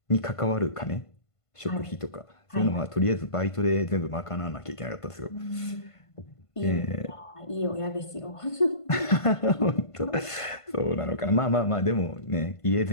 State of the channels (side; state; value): right; late; 1.5 ms